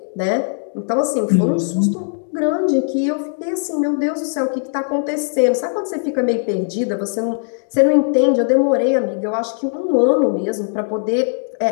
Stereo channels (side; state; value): right; silent; digital silence